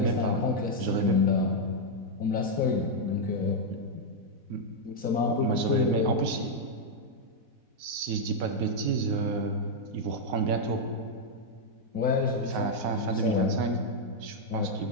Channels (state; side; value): late; left; 4.1 ms